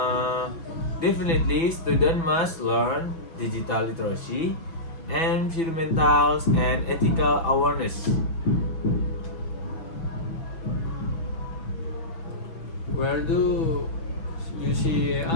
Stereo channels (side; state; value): right; late; 6.1 ms